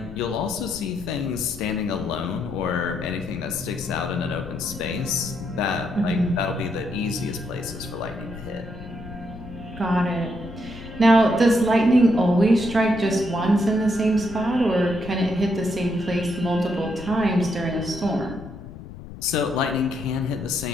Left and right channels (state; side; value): noise; left; rumble, 13 dB below the sound